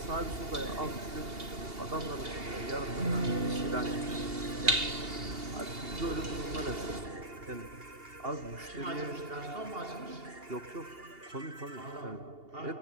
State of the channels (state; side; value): late; left; 2.8 ms